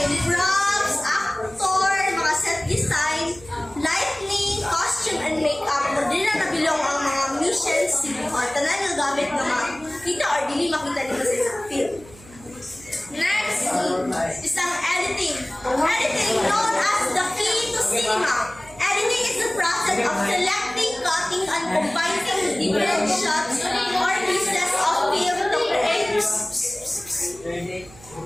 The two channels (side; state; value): right; noise; hum, 22 dB below the sound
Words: props, actor, mga set design, lighting, costume, and makeup. Kung di na nabilong ang mga mission scene o tanan yung gamit na makita or dili makita dito sa isang film. Next is ang editing. Editing known as the key to cinema. Editing is the process of selecting, cutting, and combining different shots or pieces of